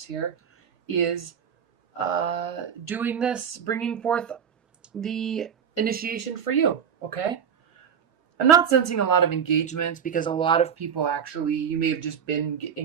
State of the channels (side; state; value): left; quieter; 7.7 dB